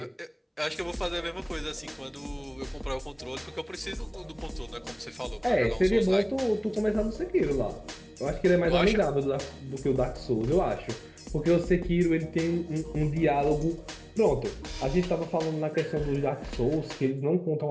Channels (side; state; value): both; identical; correlation 1.00